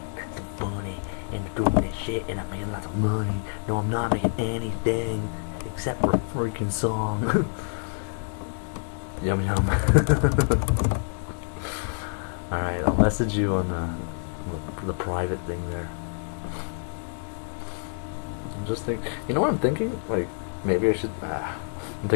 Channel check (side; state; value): right; silent; 60 dB below the other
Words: and doing this shit, and I'm making lots of money. No, I'm not making anything except for a freaking song. Yum yum. Alright, I'll message you on the private thing there. I'm just thinking, you know what I'm thinking? Like, maybe I should, I'm